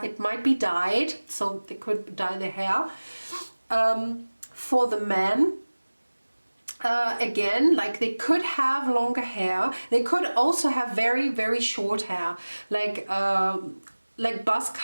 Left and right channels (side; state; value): both; inverted; correlation -1.00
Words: it might be dyed, so they could dye their hair. For the men, again, like they could have longer hair. They could also have very, very short hair, like buzz